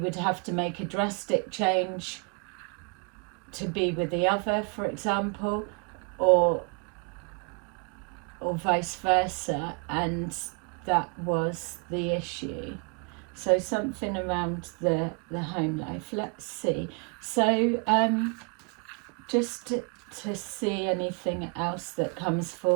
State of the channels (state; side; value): quieter; left; 36.3 dB